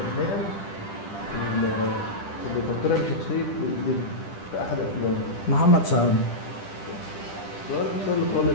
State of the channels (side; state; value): right; late; 10 ms